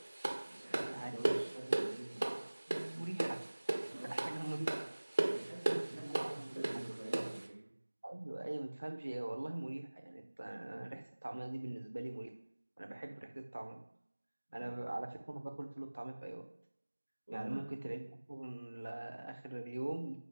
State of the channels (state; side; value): inverted; both; correlation -1.00